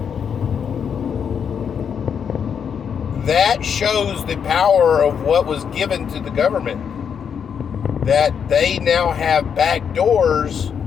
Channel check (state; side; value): quieter; right; 7.3 dB